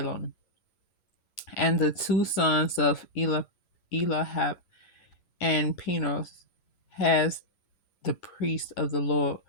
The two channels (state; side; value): late; right; 11 ms